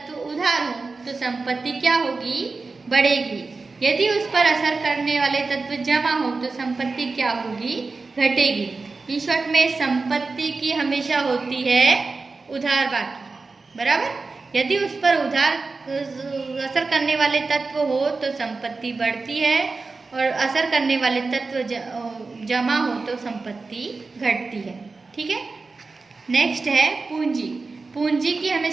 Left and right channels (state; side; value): quieter; left; 4.0 dB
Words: उधार हो तो संपत्ति क्या होगी? बढ़ेगी। यदि उस पर असर करने वाले तत्व जमा हो तो संपत्ति क्या होगी? घटेगी। इन शॉर्ट में संपत्ति की हमेशा होती है उधार बाकी, बराबर। यदि उस पर उधार असर करने वाले तत्व हो तो संपत्ति बढ़ती है और असर करने वाले तत्व जमा हो तो संपत्ति घटती है। ठीक है। नेक्स्ट है पूंजी। पूंजी की